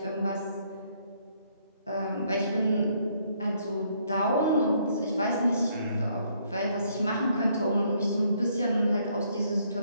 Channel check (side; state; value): both; inverted; correlation -0.68